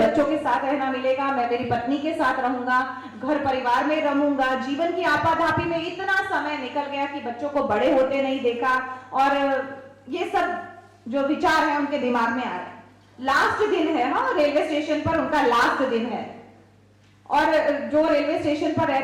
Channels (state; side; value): identical; both; correlation 1.00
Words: के साथ रहना मिलेगा, मैं मेरी पत्नी के साथ रहूंगा, घर परिवार में रहूंगा। जीवन की आपाधापी में इतना समय निकल गया कि बच्चों को बड़े होते नहीं देखा, और ये सब जो विचार है उनके दिमाग में आ रहे हैं। लास्ट दिन है, हाँ, रेलवे स्टेशन पर उनका लास्ट दिन है, और जो रेलवे स्टेशन पर